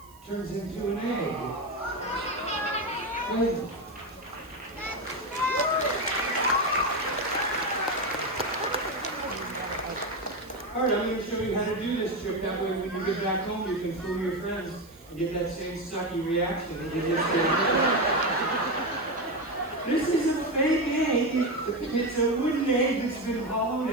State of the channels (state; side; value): noise; right; hiss, 26 dB below the sound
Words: Turns into an egg. Right. Alright, I'm going to show you how to do this trick. That way when you get back home, you can fool your friends and get that same sucky reaction that you just did. This is a fake egg. It's a wooden egg that's been